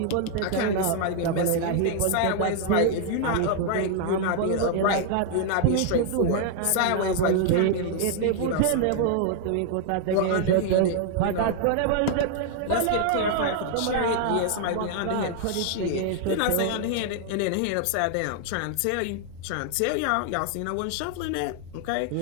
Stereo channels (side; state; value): both; different; correlation 0.00